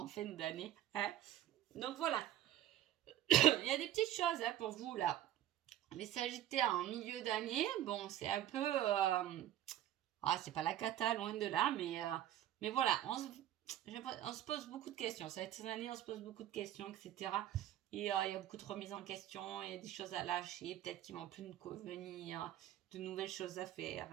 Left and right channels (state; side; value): quieter; left; 12.5 dB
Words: fin d'année. Hein. Donc voilà. Il y a des petites choses hein, pour vous là. Les Sagittaires en milieu d'année, bon, c'est un peu... c'est pas la cata, loin de là, mais voilà, on se pose beaucoup de questions. Cette année, on se pose beaucoup de questions, etc. Et il y a beaucoup de remises en question, il y a des choses à lâcher, peut-être qui vont plus nous convenir, de nouvelles choses à faire.